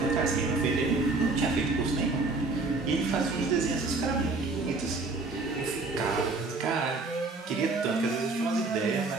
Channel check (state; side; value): quieter; left; 3.6 dB